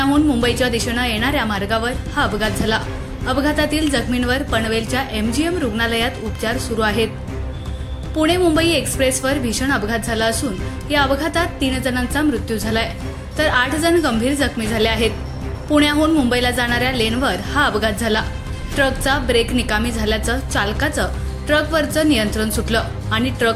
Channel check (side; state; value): both; identical; correlation 1.00